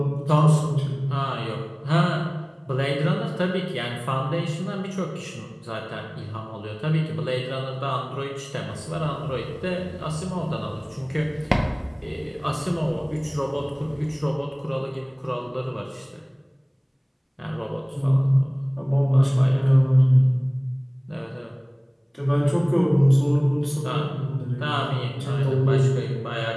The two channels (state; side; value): identical; both; correlation 1.00